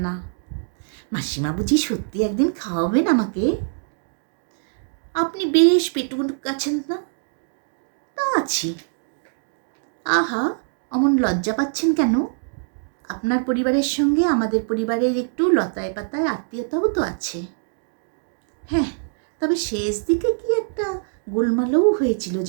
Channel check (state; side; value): silent; left; digital silence